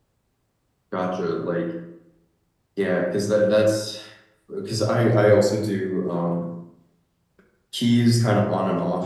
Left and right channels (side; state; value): both; identical; correlation 1.00